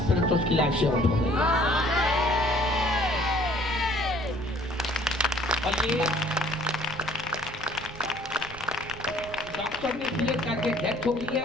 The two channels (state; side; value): noise; right; rumble, 16 dB below the sound